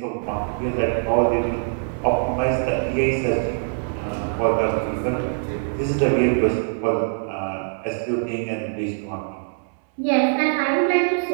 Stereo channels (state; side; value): silent; left; 63 dB below the other